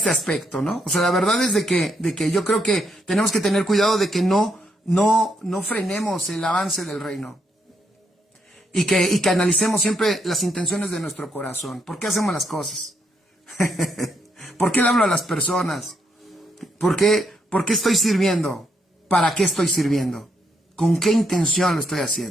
aspecto, ¿no? O sea, la verdad es de que yo creo que tenemos que tener cuidado de que no frenemos el avance del reino. Y que analicemos siempre las intenciones de nuestro corazón. ¿Por qué hacemos las cosas? ¿Por qué le hablo a las personas? ¿Por qué estoy sirviendo? ¿Para qué estoy sirviendo? ¿Con qué intención lo estoy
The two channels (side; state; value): both; normal; correlation 0.77